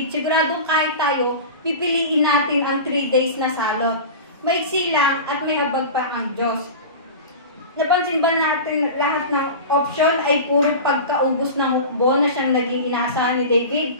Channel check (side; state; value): both; inverted; correlation -0.31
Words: siguradong kahit tayo, pipiliin natin ang 3 days na salot. Maiksi lang at may habag pa ang Diyos. Napansin ba natin lahat ng option ay puro pagkaubos ng hukbo na siyang naging inaasahan ni